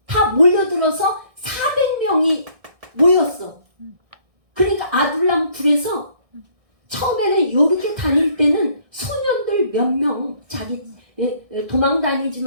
다 몰려들어서 400명이 모였어. 그러니까 아둘람 굴에서 처음에는 이렇게 다닐 때는 소년들 몇 명, 도망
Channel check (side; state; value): left; late; 1.6 ms